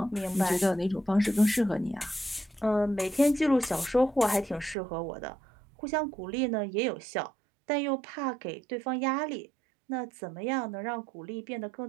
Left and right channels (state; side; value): drops out; left; at 4.8 s